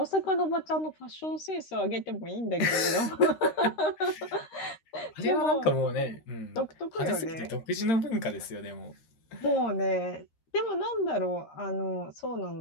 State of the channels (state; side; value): late; right; 13 ms